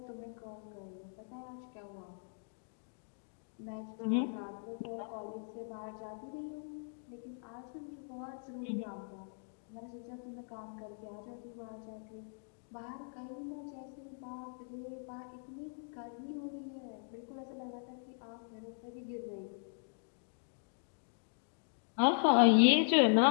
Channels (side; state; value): right; silent; digital silence